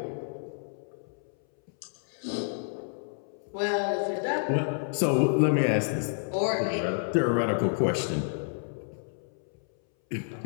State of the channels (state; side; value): silent; right; 58 dB below the other